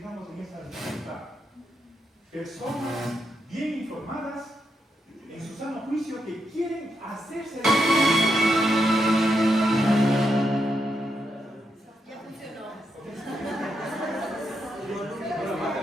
en esa dificultad. Personas bien informadas, en su sano juicio, que quieren hacerse. Ya funcionó.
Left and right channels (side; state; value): both; normal; correlation 0.82